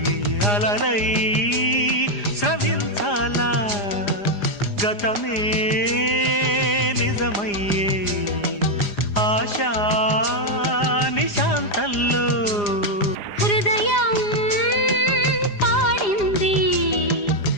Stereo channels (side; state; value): right; late; 4.9 ms